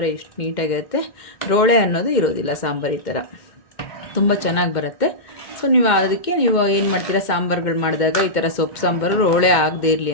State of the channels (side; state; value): right; late; 2.1 ms